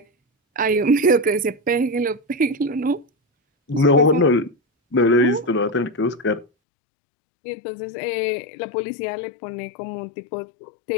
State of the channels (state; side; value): drops out; right; at 6.5 s